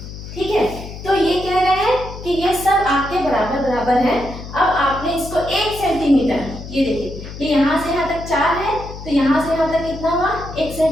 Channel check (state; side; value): noise; left; hum, 12 dB below the sound